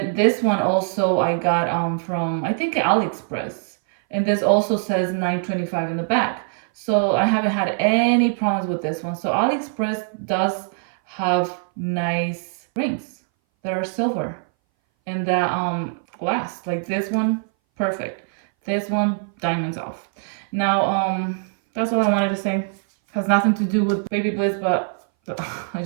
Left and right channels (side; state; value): left; silent; 61 dB below the other